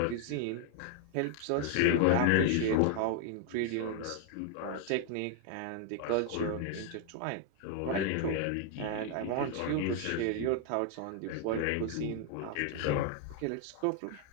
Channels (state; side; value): different; both; correlation 0.00